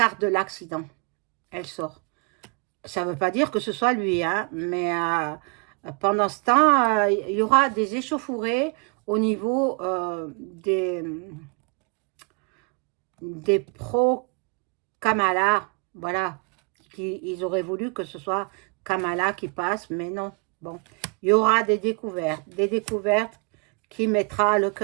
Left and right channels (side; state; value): left; quieter; 34.5 dB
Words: de l'accident. Elle sort. Ça ne veut pas dire que ce soit lui, hein, mais pendant ce temps, il y aura des échauffourées au niveau des pro-Kamala. Voilà. Ils auraient voulu que ce soit Kamala qui passe, mais non. Bon, il y aura des découvertes qui mettra le